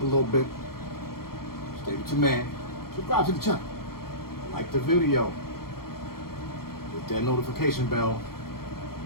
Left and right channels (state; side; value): late; right; 0.94 ms